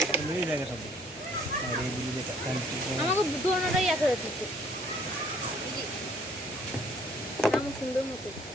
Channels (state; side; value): normal; both; correlation 0.60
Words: মেরে জায়গা সব আরে দিলি যে কান আমাকে দোনোটাই একা যাচ্ছে নাম সুন্দর মতো